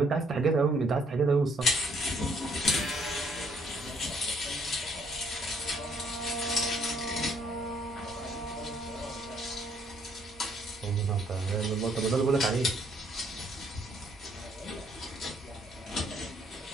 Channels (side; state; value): both; normal; correlation 0.66